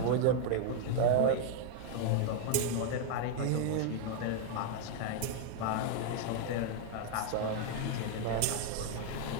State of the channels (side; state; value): both; different; correlation 0.00